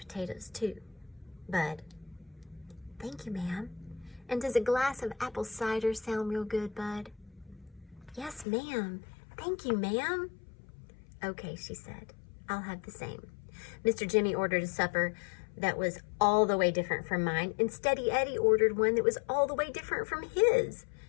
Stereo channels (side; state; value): right; drops out; at 8.5 s